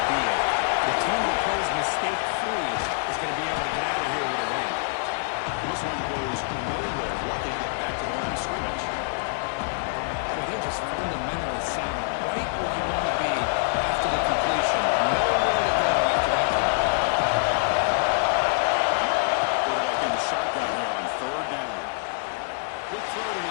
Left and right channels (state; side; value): silent; right; digital silence